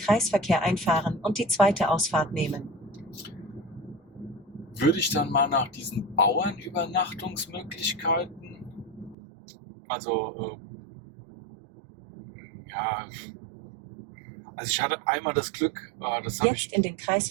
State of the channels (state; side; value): drops out; left; at 9.2 s